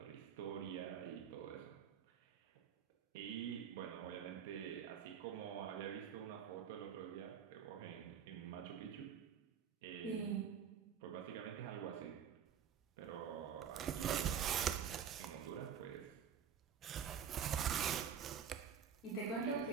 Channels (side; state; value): left; quieter; 8.0 dB